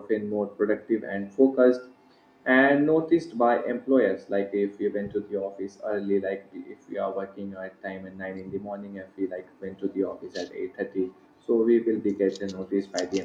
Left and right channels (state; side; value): identical; both; correlation 1.00